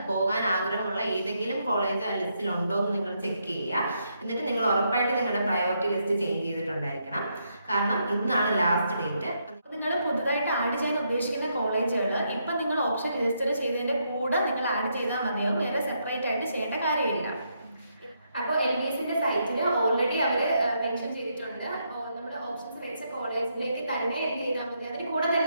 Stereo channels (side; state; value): both; inverted; correlation -0.78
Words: പോകാൻ ആഗ്രഹമുള്ള ഏതെങ്കിലും കോളേജ് ആ ലിസ്റ്റിൽ ഉണ്ടോ എന്ന് നിങ്ങൾ ചെക്ക് ചെയ്യുക. എന്നിട്ട് നിങ്ങൾ ഉറപ്പായിട്ട് നിങ്ങളുടെ പ്രയോറിറ്റി ലിസ്റ്റ് ചേഞ്ച് ചെയ്തിട്ടുണ്ടായിരിക്കണം. കാരണം ഇന്നാണ് ലാസ്റ്റ് ഡേറ്റ്. നിങ്ങൾ പുതുതായിട്ട് ആഡ് ചെയ്യാൻ ഉദ്ദേശിക്കുന്ന കോളേജുകൾ ഇപ്പം നിങ്ങൾ ഓപ്ഷൻ രജിസ്റ്റർ ചെയ്തതിൻ്റെ കൂടെ നിങ്ങൾ ആഡ് ചെയ്താൽ മതിയാവും. വേറെ സെപ്പറേറ്റ് ആയിട്ട് ചെയ്യേണ്ട കാര്യമില്ല. അപ്പോൾ LBSന്റെ സൈറ്റിൽ ഓൾറെഡി അവർ മെൻഷൻ ചെയ്തിട്ടുണ്ട്. നമ്മുടെ ഓപ്ഷൻസ് വെച്ച കോളേജിലേക്ക് തന്നെ എൻഡ് ചെയ്താൽ മതി. അതിന് കൂടെ